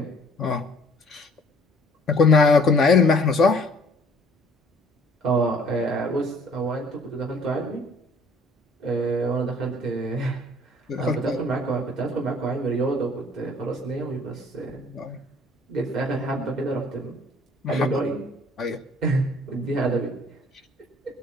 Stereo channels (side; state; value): both; normal; correlation 0.56